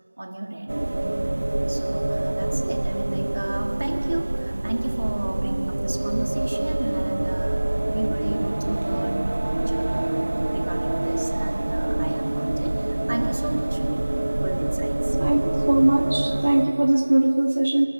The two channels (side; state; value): both; inverted; correlation -1.00